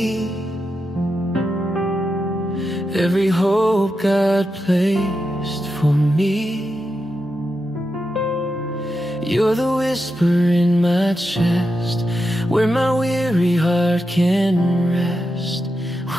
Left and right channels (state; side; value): normal; both; correlation 0.88